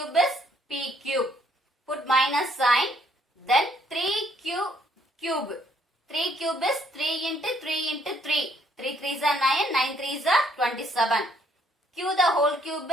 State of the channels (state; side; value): normal; both; correlation 0.67